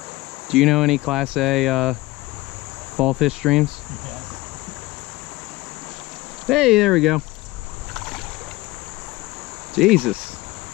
Do you know any Class A fall fish streams? Yes. Hey, there we go. Jesus.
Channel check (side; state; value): right; quieter; 19.9 dB